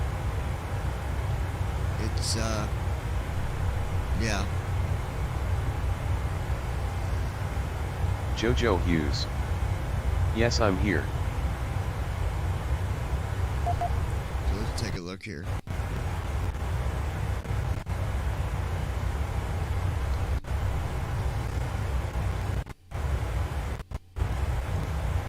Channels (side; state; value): both; identical; correlation 1.00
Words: it's Yeah. Jojo Hughes. Yes, I'm here. So let's take a look here.